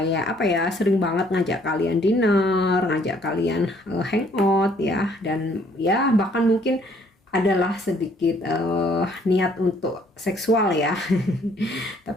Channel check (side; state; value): both; normal; correlation 0.63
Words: apa ya, sering banget ngajak kalian dinner, ngajak kalian hangout ya. Dan ya bahkan mungkin adalah sedikit niat untuk seksual ya.